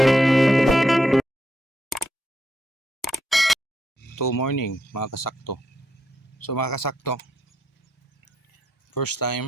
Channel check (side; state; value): both; normal; correlation 0.80